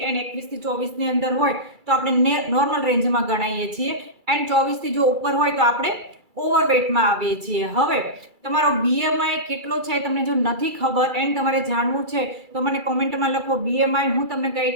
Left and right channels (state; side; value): late; left; 2.3 ms